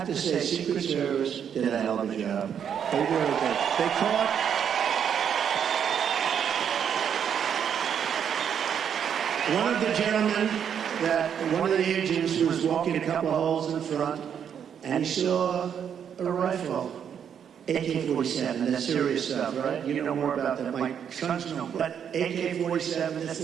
to say, Secret Service did a hell of a job. They really did. They caught one of the gentlemen, one of the agents was walking a couple of holes in front, and he saw a rifle. AK-47, that's serious stuff, right? You know more about that. My sons know. But AK-47,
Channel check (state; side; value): quieter; left; 8.2 dB